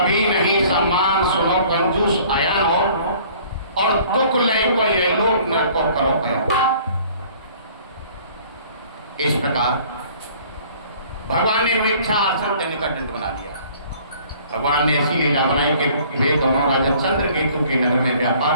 नहीं सम्मान। सुनो कंजूस आया हो और दुख ले को ये लोग न को करो गया। इस प्रकार भगवान ने मिथ्या आसन देने का दंड बना दिया। भगवान ने ऐसी लीला बनाई कि वे दोनों राजा चंद्रकेतु के नगर में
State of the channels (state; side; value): inverted; both; correlation -0.53